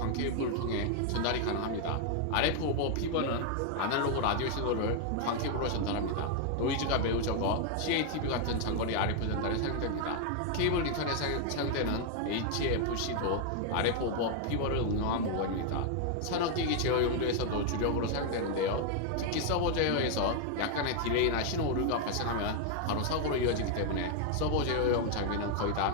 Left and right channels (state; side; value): different; both; correlation 0.00